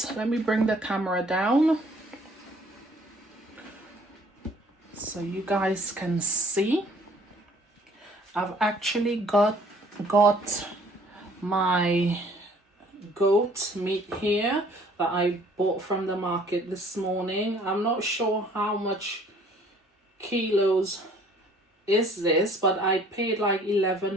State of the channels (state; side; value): normal; both; correlation 0.57